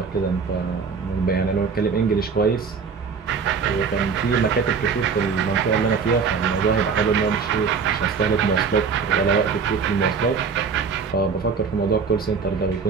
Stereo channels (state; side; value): quieter; left; 5.6 dB